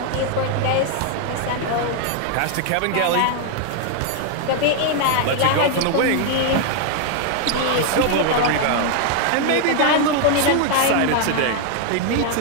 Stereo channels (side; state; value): both; different; correlation 0.00